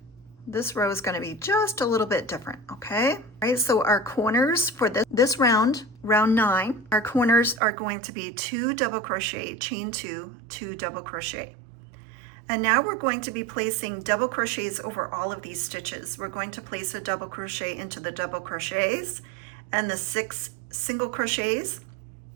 This row is going to be just a little bit different, okay? All right, so our corners for this round, round 9, our corners are going to be 2 double crochet, chain 2, 2 double crochet. And now we're going to be placing double crochets over all of these stitches. We're going to place a double crochet into the double crochets and the 6 single crochets,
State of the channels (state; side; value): drops out; left; at 7.6 s